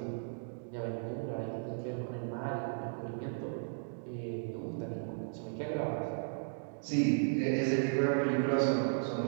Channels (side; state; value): left; silent; digital silence